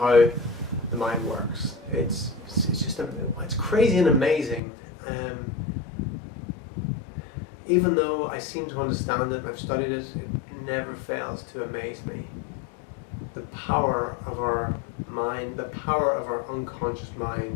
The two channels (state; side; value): drops out; right; at 4.6 s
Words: the mind works? It's crazy and amazing. Even though I seem to understand it and I've studied it, it never fails to amaze me. The power of our mind, the power of our unconscious